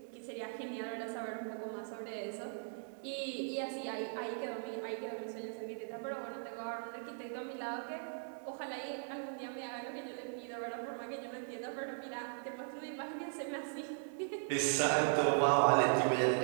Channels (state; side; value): silent; left; digital silence